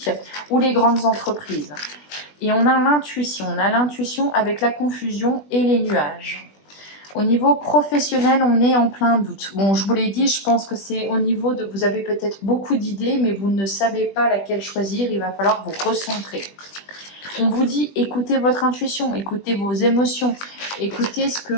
ou les grandes entreprises. Et on a l'intuition avec la confusion et les nuages. Au niveau professionnel, on est en plein doute. Bon, je vous l'ai dit, je pense que c'est au niveau de... Vous avez peut-être beaucoup d'idées, mais vous ne savez pas laquelle choisir. Il va falloir vous recentrer. On vous dit, écoutez votre intuition, écoutez vos émotions, écoutez ce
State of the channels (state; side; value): late; right; 20 ms